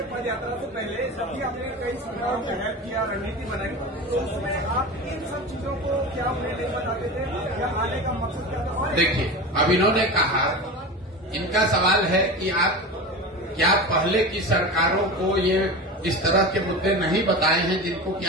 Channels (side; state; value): both; normal; correlation 0.28